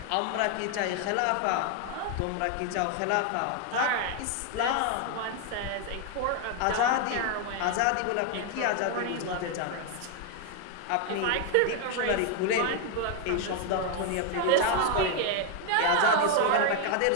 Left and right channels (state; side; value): different; both; correlation 0.01